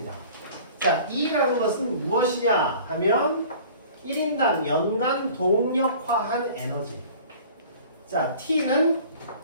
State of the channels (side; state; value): both; inverted; correlation -0.47